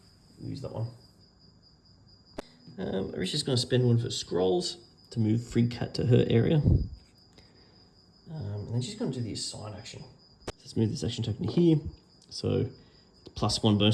we'll use that one. Arisha's going to spend 1 for scrolls to move Free Cat to her area. And then she's going to do the assign action. Let's move this action token here. So +1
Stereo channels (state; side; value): identical; both; correlation 1.00